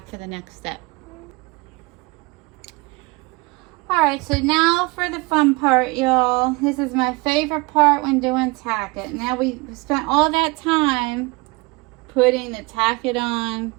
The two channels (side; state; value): left; quieter; 25.6 dB